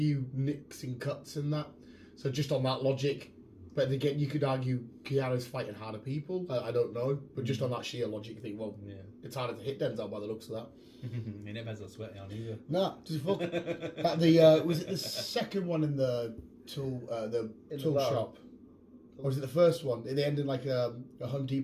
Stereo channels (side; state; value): both; identical; correlation 1.00